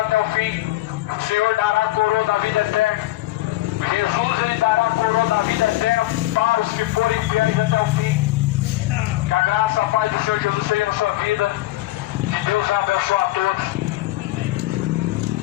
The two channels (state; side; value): quieter; right; 17.3 dB